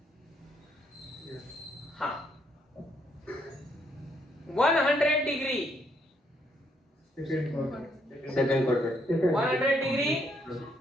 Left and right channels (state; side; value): normal; both; correlation 0.72